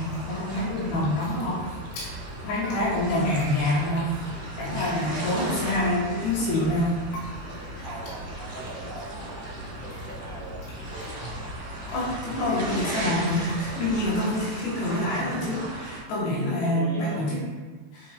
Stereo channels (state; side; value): late; right; 18 ms